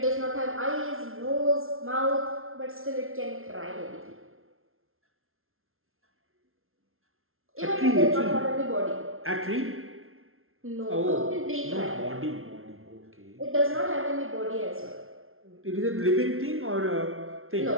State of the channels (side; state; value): left; late; 0.61 ms